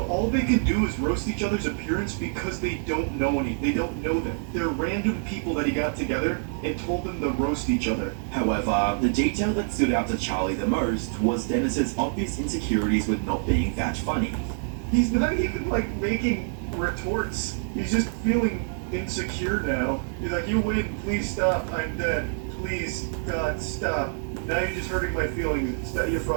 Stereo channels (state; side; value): silent; left; digital silence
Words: all they could do is roast each other's appearance because they don't know they don't know them. They're random people that he got together and told them to roast each other. However, the detail that stood out to Charlie the most was Dennis's obvious insecurities with not being that funny. He's not even like making retorts. He's just feeling insecure now. He's like, you win, please stop, I'm dead. Please, God, stop. Now you're just hurting my feelings. You're